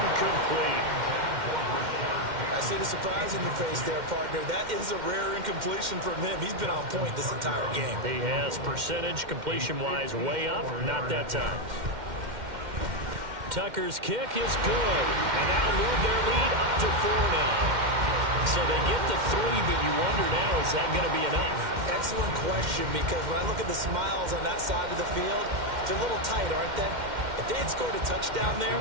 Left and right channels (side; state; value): left; late; 2.1 ms